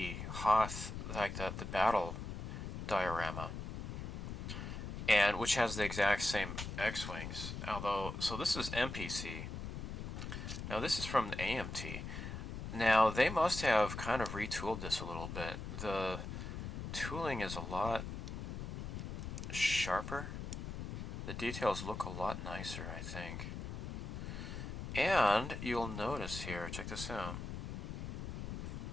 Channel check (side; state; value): left; noise; rumble, 6 dB below the sound